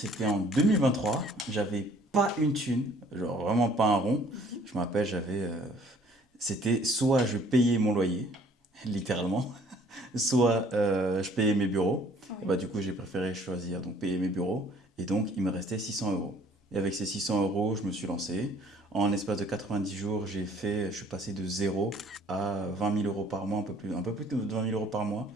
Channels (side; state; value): both; normal; correlation 0.57